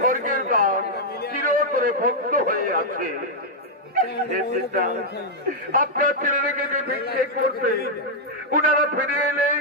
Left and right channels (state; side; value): normal; both; correlation -0.04